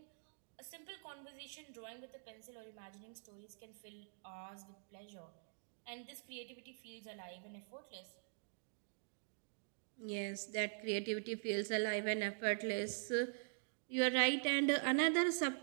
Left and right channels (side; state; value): left; silent; digital silence